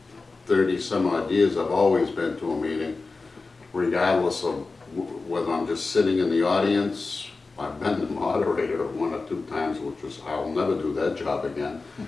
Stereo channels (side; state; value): right; quieter; 3.9 dB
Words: 30 some odd years, I've always been to a meeting, regardless of whether I'm just sitting in the audience. I've been the moderator 1 or 2 times, which was, I'll never do that job again.